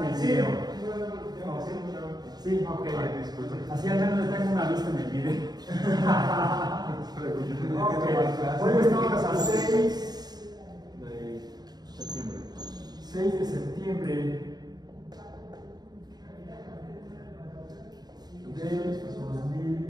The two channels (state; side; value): late; left; 0.20 ms